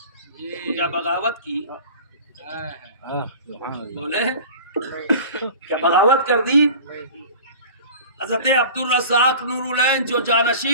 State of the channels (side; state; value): both; inverted; correlation -0.40